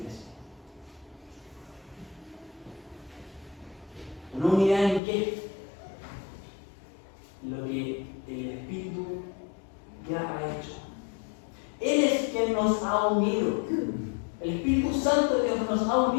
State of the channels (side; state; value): right; drops out; at 5.0 s